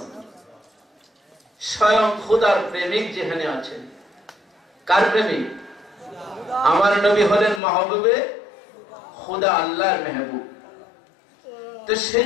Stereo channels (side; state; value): right; drops out; at 7.6 s